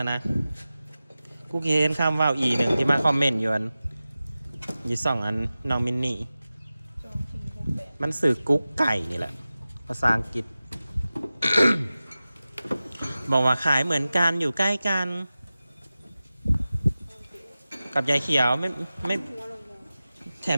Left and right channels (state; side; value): inverted; both; correlation -0.96